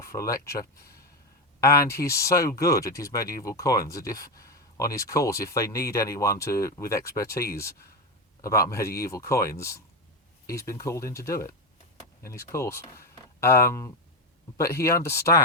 for a lecture. And he's so good at his medieval coins that if, on his course, if they need anyone with expertise about medieval coins, he's been called in to do it in his course. But he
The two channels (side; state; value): both; normal; correlation 0.13